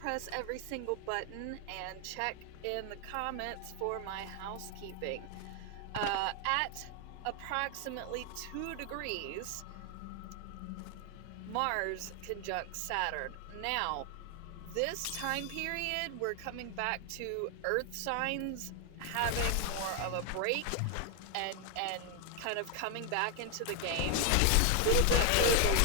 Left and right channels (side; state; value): both; different; correlation 0.00